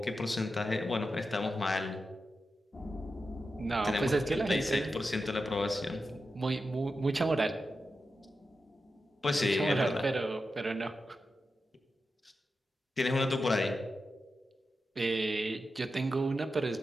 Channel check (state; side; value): normal; both; correlation 0.90